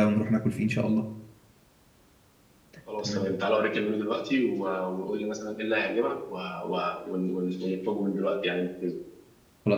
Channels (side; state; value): both; identical; correlation 1.00